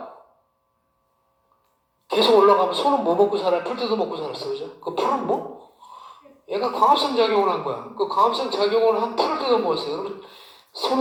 계속 올라가면 소는 뭐 먹고 살아요? 풀 뜯어 먹고 살았어, 그죠? 그 풀은 뭐? 얘가 광합성 작용을 한 거야. 그 광합성 작용을 한 풀을 뜯어 먹었어요. 여러분,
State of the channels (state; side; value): identical; both; correlation 1.00